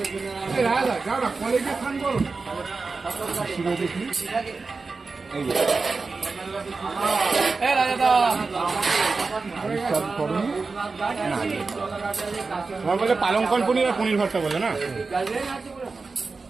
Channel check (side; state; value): left; quieter; 4.2 dB